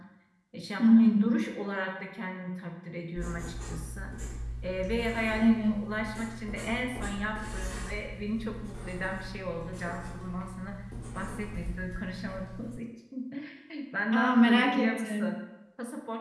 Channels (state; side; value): identical; both; correlation 1.00